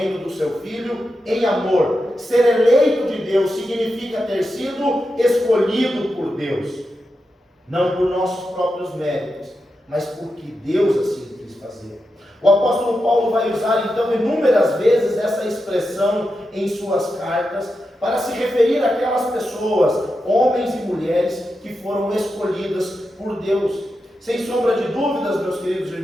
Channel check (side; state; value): both; normal; correlation 0.88